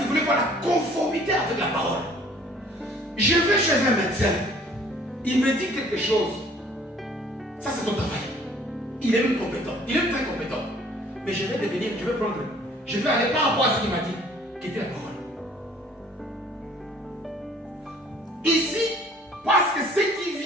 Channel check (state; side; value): normal; both; correlation 0.56